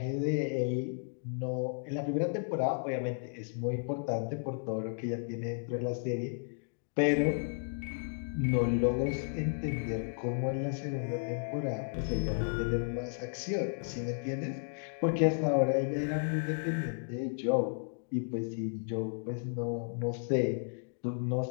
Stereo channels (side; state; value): right; silent; digital silence